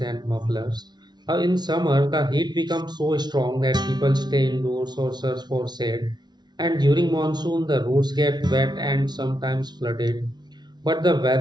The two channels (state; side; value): late; left; 0.20 ms